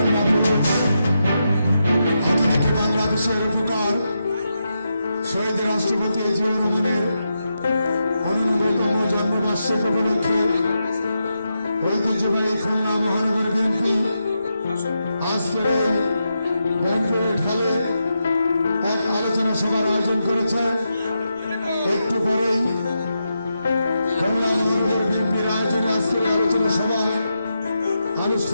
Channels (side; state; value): both; inverted; correlation -0.86